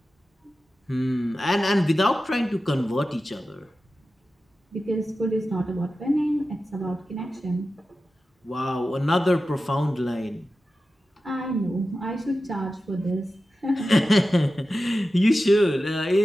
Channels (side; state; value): both; normal; correlation 0.93